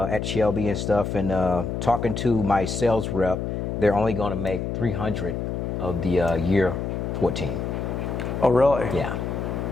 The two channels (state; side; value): noise; left; hum, 3 dB below the sound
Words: Shelby and stuff. And talking to my sales rep, they're only going to make 300 of the year 14. Oh, really? Yeah.